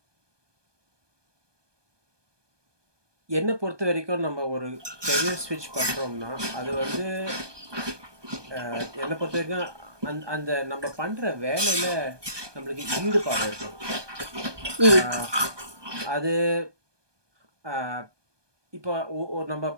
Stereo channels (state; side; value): late; left; 1.2 ms